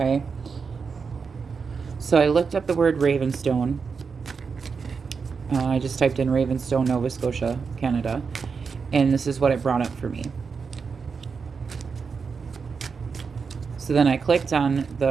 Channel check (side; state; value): left; quieter; 5.4 dB